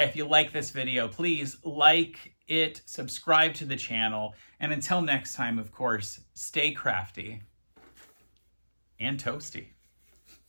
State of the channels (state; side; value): inverted; both; correlation -1.00